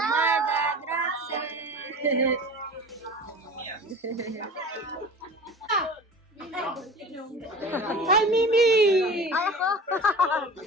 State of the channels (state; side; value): normal; both; correlation 0.37